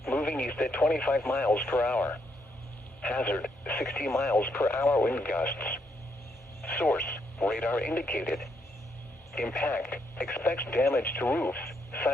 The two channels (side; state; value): both; normal; correlation 0.76